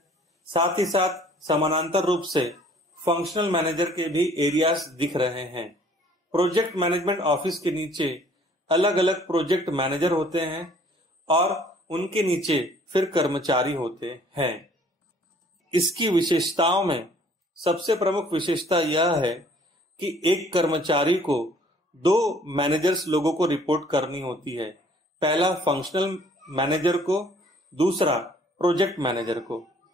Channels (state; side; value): normal; both; correlation 0.57